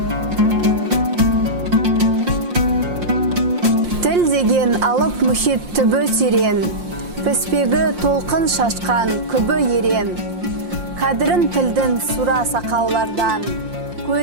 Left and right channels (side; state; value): left; late; 5.7 ms